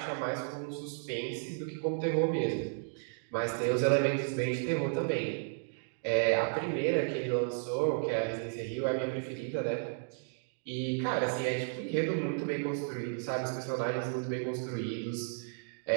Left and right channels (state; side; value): silent; left; digital silence